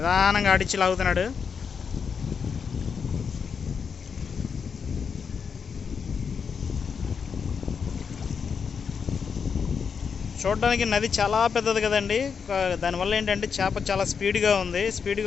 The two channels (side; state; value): right; quieter; 6.2 dB